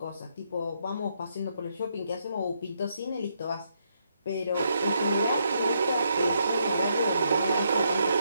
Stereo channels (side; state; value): both; inverted; correlation -0.77